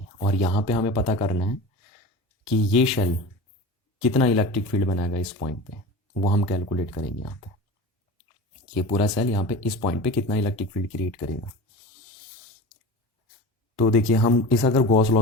और यहाँ पे हमें पता करना है कि ये सेल कितना इलेक्ट्रिक फील्ड बनाएगा इस पॉइंट पे, वो हम कैलकुलेट करेंगे। यहाँ पे ये पूरा सेल यहाँ पे इस पॉइंट पे कितना इलेक्ट्रिक फील्ड क्रिएट करेगा। तो देखिए, हम इस अगर गॉस लॉ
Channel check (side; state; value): both; normal; correlation 0.33